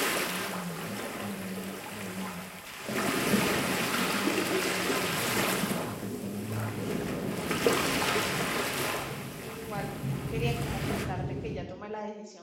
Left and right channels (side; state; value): both; identical; correlation 1.00